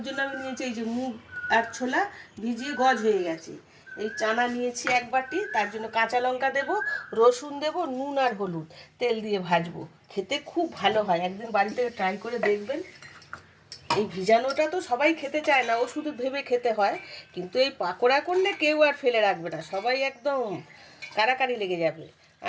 জন্য আমি নিয়েছি এই যে মুগ আর ছোলা ভিজিয়ে গজ হয়ে গেছে। এই চানা নিয়েছি 1 বাটি, তার জন্য কাঁচা লঙ্কা দেবো, রসুন দেবো, নুন আর হলুদ, তেল দিয়ে ভাজবো। খেতে খুব ভালো হয়, একদিন বাড়িতে ট্রাই করে দেখবেন। এই ভিজানোটা তো সবাই খেতে চায় না, শুধু ভেবে খেতে হয়, কিন্তু এই পাকোড়া করলে কেউ আর ফেলে রাখবে না, সবাই একদম কারাকারি লেগে যাবে।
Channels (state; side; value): identical; both; correlation 1.00